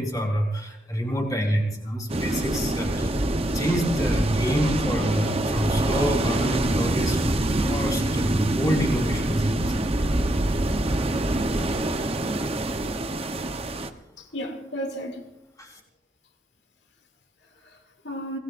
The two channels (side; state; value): both; normal; correlation 0.78